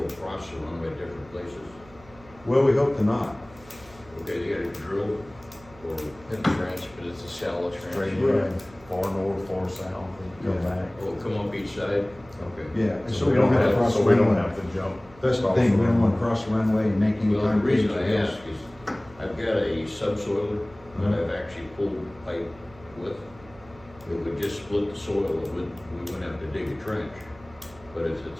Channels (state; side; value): noise; right; hum, 23 dB below the sound